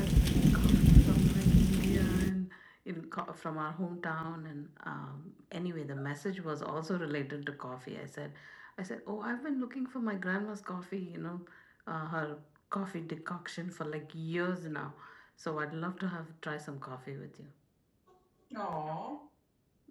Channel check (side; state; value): both; identical; correlation 1.00